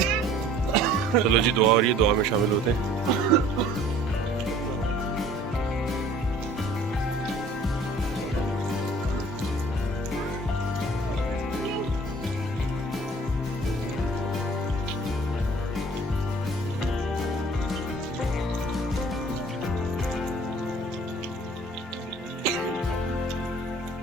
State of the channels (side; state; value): both; normal; correlation 0.52